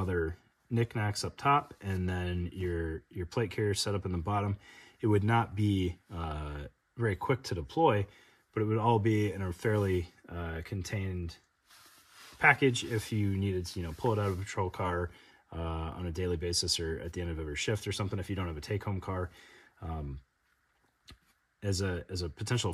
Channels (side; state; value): both; identical; correlation 1.00